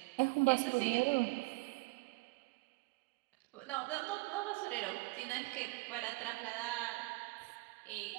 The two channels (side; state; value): left; quieter; 24.9 dB